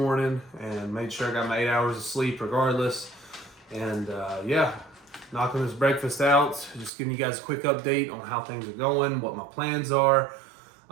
and made sure I got my 8 hours of sleep regardless. And yeah, knocking this breakfast out, just giving you guys a quick update on how things are going, what my plans are.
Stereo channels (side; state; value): left; drops out; at 6.9 s